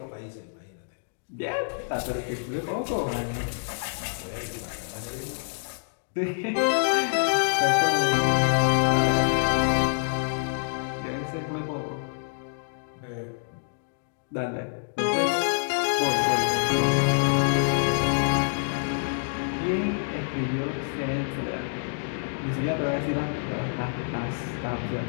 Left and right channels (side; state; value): right; silent; digital silence